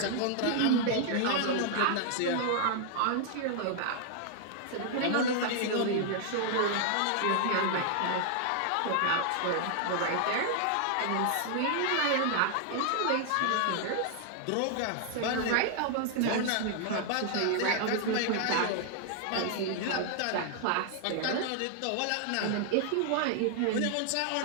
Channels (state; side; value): different; both; correlation 0.00